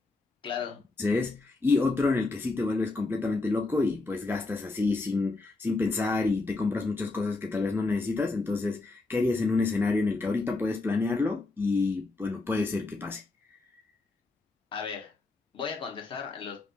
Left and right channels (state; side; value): quieter; right; 3.4 dB